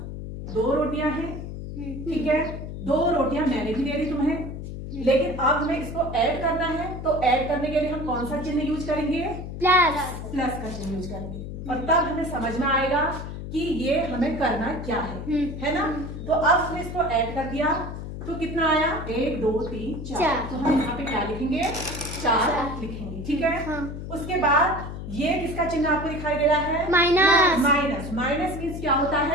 दो रोटियां हैं, ठीक है। दो रोटियां मैंने भी दे दी तुम्हें, लेकिन अब हमें इसको ऐड करना है, तो ऐड करने के लिए हम कौन सा चिन्ह यूज करेंगे? प्लस। प्लस का चिन्ह यूज करेंगे। और तब हमें समझ में आएगा कि ये हमें करना क्या है ना। तो अब हमने इसको ऐड कर दिया तो कितना आया? 1 2 3 4। तो हम यहाँ पे क्या लिखेंगे? 4 लिखेंगे। ठीक है। उसके बाद ये किसका चिन्ह आपको दिखाई दे रहा है? माइनस। माइनस। माइनस मीन्स क्या होता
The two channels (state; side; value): noise; left; hum, 8 dB below the sound